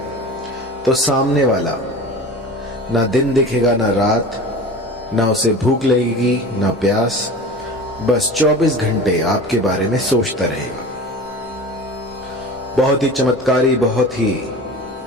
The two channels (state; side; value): normal; both; correlation 0.35